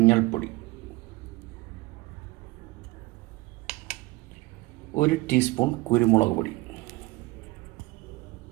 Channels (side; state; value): left; quieter; 21.5 dB